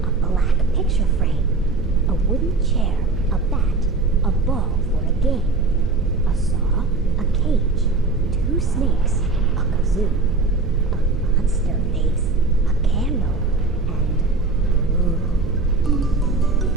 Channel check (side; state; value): left; quieter; 3.7 dB